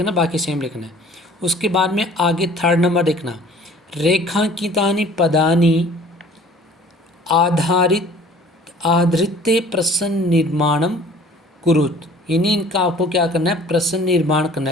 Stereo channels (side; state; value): both; normal; correlation 0.50